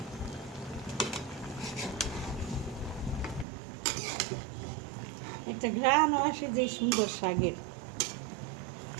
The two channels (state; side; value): drops out; left; at 3.5 s